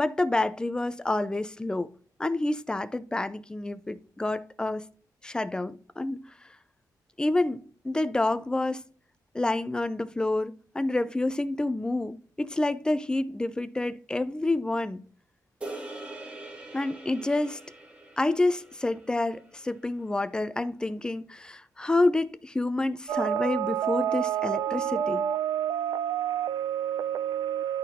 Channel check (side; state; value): both; normal; correlation 0.84